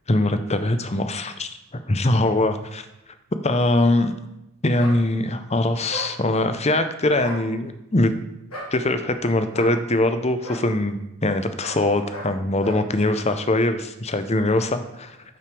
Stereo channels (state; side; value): normal; both; correlation 0.58